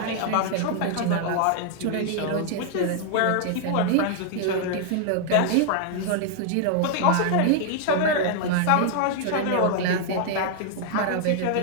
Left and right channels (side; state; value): both; different; correlation 0.00